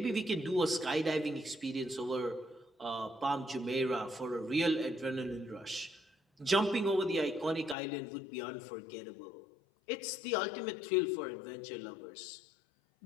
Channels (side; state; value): right; drops out; at 7.8 s